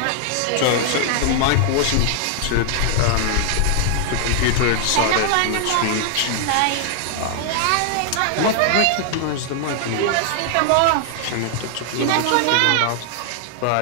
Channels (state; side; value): different; both; correlation 0.00